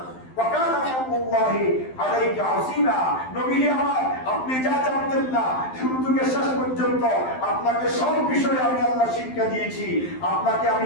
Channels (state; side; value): late; right; 12 ms